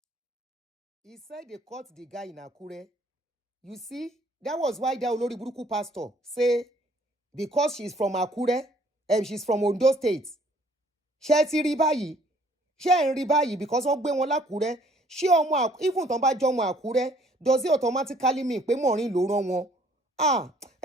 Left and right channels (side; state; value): both; normal; correlation 0.60